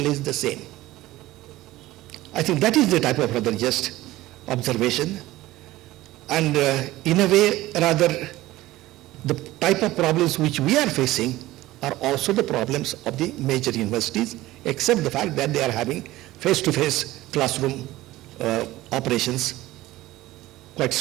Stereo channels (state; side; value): quieter; left; 17.0 dB